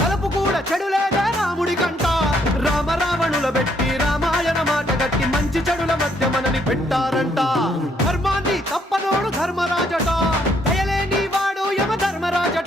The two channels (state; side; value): normal; both; correlation 0.70